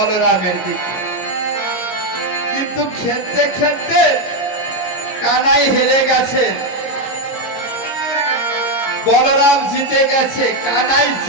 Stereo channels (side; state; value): right; late; 21 ms